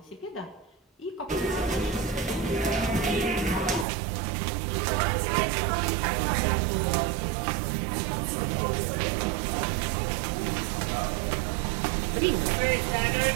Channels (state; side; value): drops out; left; at 3.9 s